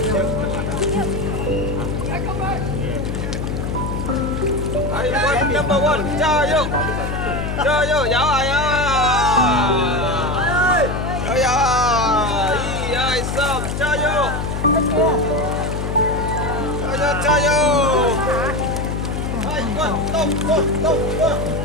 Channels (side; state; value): left; noise; hum, 3 dB below the sound